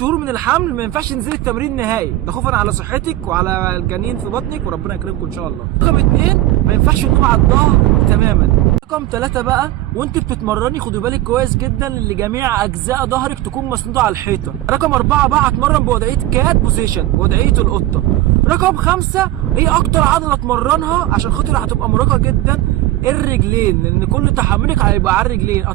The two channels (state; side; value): quieter; left; 15.8 dB